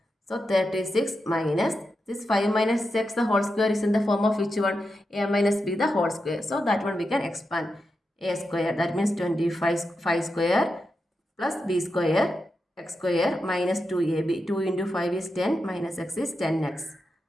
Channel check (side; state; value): both; normal; correlation 0.88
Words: So 36 minus this 5 minus X the whole square is in the form of which one? A minus B the whole square. So that one we can expand. A square, that means 25 5 square plus B square X square minus 2AB. 2 into 5 is 10 minus X is 10X.